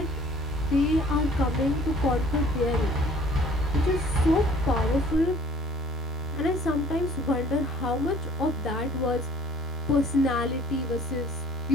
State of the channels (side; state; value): both; normal; correlation 0.55